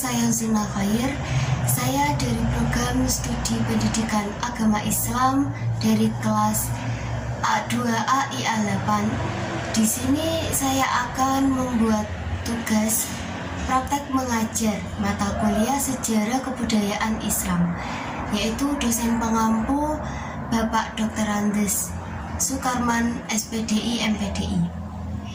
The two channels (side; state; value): both; identical; correlation 1.00